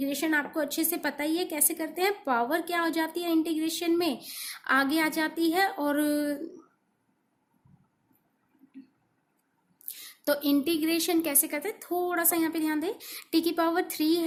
आपको अच्छे से पता ही है कैसे करते हैं, पावर क्या हो जाती है इंटीग्रेशन में, आगे आ जाती है। और तो इंटीग्रेशन कैसे करते हैं, थोड़ा सा यहाँ पे ध्यान दें, t की पावर 3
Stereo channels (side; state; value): both; identical; correlation 1.00